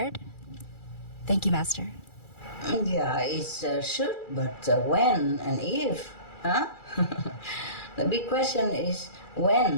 Thank you, Master. Yeah, it's should, but when and if, huh? The big question is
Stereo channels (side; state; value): right; late; 2.3 ms